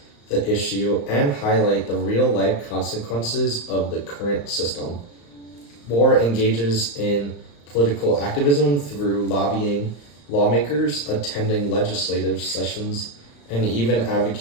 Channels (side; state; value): right; late; 35 ms